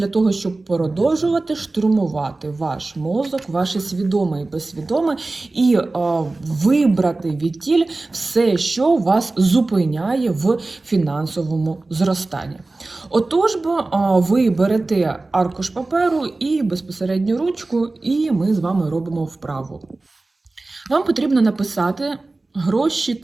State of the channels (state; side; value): quieter; left; 3.2 dB